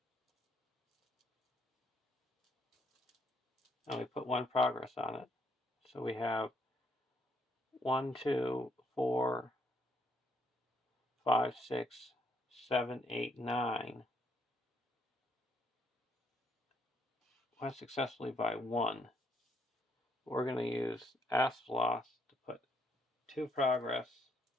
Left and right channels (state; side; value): normal; both; correlation 0.71